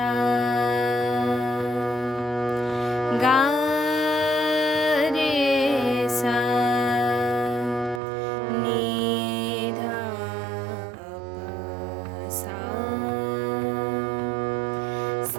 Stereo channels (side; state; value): left; drops out; at 8.0 s